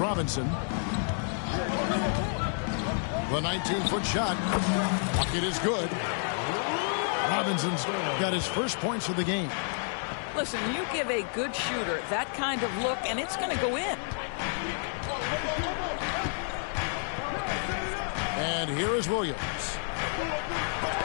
The 19-foot shot. Bucket is good. Robinson's got his first points of the game. Listen, you give a good shooter that kind of look, and it's going to go in. And here is Williams.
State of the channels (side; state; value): right; silent; 58 dB below the other